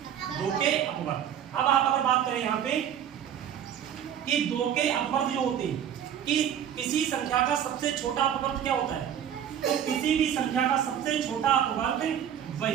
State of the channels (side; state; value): left; quieter; 9.5 dB